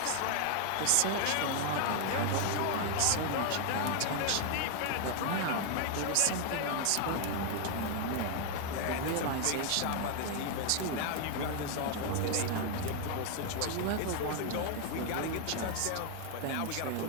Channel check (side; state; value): both; different; correlation 0.00